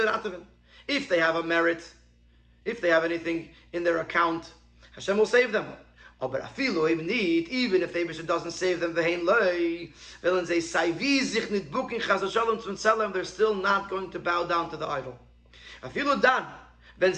if they have a merit, if they have anything in their account, Hashem will save them. But even if the Eibishter doesn't save them, they're still not going to bow down to the idol.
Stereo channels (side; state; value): both; identical; correlation 1.00